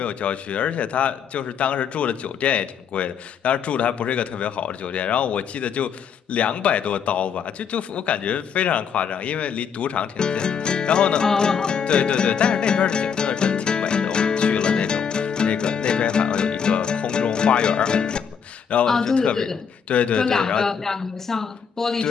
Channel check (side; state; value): right; quieter; 7.0 dB